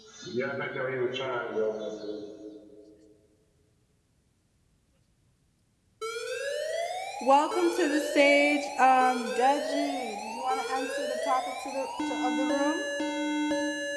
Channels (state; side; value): identical; both; correlation 1.00